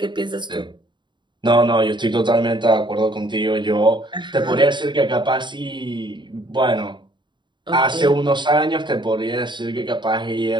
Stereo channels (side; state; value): left; late; 0.22 ms